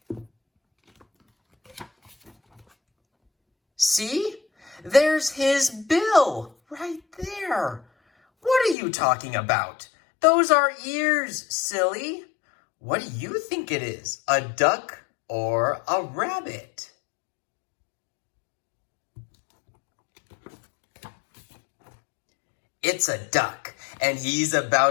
See? There's his bill right there. What are you talking about? Those are ears, silly. What do you think it is? A duck or a rabbit? It's a duck, and he's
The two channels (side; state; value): right; drops out; at 8.8 s